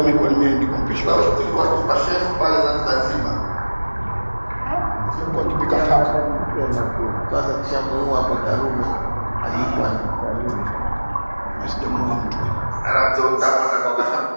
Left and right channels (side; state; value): both; inverted; correlation -1.00